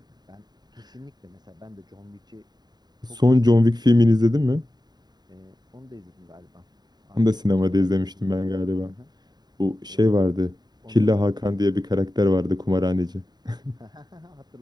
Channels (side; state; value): left; late; 0.20 ms